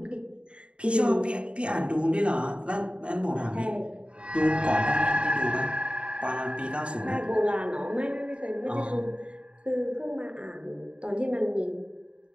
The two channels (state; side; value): late; left; 0.057 ms